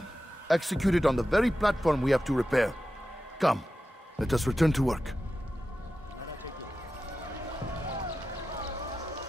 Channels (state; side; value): normal; both; correlation 0.92